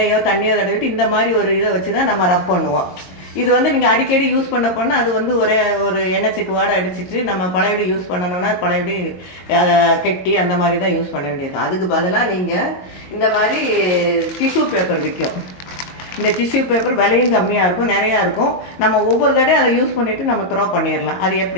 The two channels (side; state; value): right; late; 22 ms